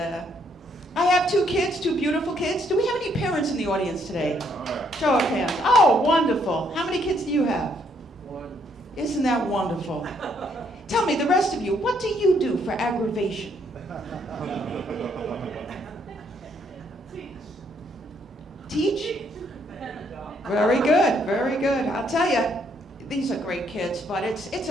I have 2 kids, 2 beautiful kids. Do we have any parents in the audience today? Show of hands. Oh, wonderful. How many kids do you have? 1. Isn't that wonderful? Tell me, the rest of you, what do you do for aggravation? Teach? Very good. I'll tell you, these are great kids, but it's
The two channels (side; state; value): both; normal; correlation 0.70